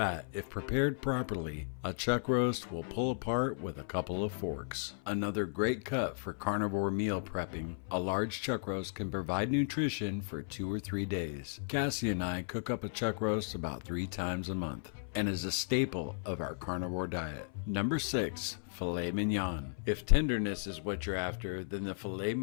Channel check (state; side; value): silent; right; 54 dB below the other